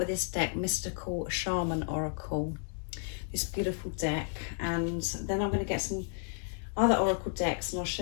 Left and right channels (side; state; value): right; silent; 56 dB below the other